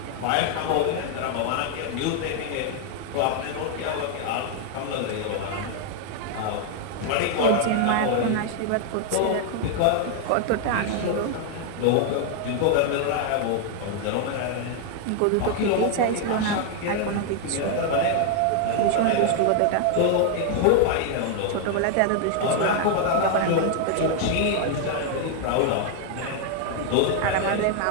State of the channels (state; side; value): different; both; correlation 0.00